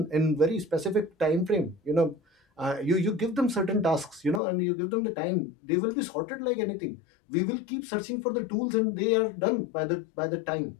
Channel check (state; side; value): drops out; right; at 4.4 s